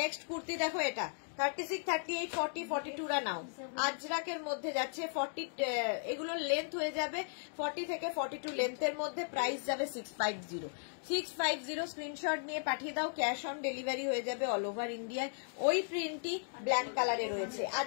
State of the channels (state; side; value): silent; right; digital silence